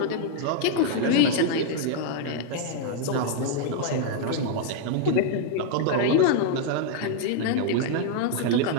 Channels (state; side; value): different; both; correlation 0.00